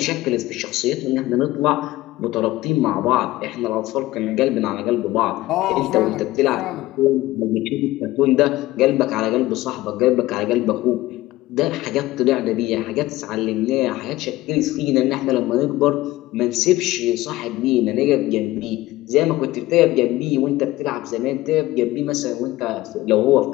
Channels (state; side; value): quieter; right; 17.4 dB